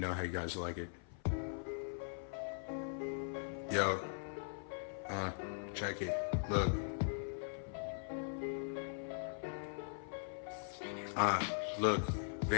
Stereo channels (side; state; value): right; silent; 50 dB below the other